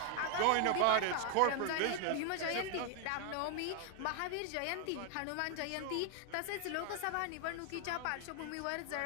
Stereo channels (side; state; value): both; different; correlation 0.00